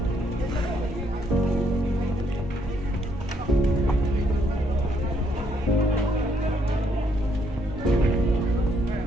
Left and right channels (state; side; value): normal; both; correlation 0.72